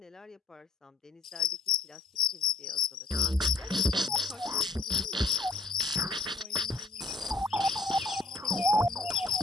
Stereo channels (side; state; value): right; quieter; 3.5 dB